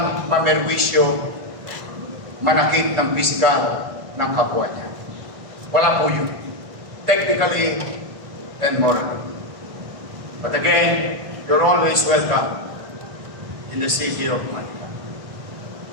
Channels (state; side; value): late; left; 1.6 ms